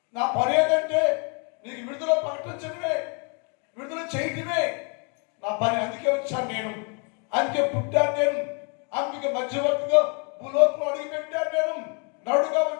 నా పని ఏంటంటే నీకు విడుదల ప్రకటించడమే, విడుదల చేయడమే నా పని. అందుకే వచ్చాను నేను, అందుకే పుట్టాను నేను, అందుకే మధ్యవర్తిగా భూలోకంలో అడిగి పెట్టాను నేను, నడుగా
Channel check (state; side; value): quieter; right; 36.9 dB